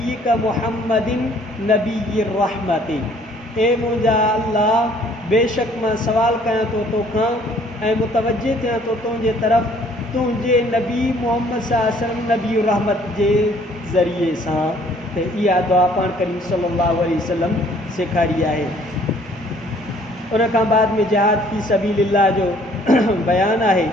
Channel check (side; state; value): both; normal; correlation 0.59